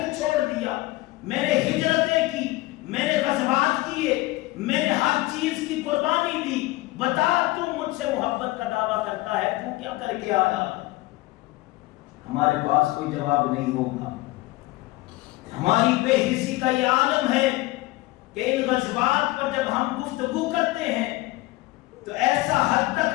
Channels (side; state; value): right; quieter; 19.9 dB